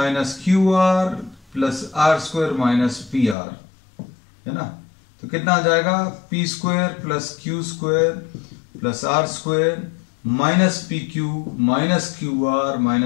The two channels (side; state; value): right; drops out; at 3.4 s